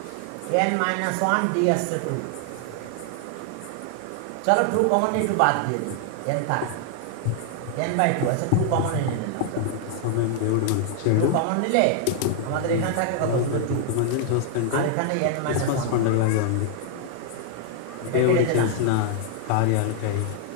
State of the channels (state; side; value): different; both; correlation 0.00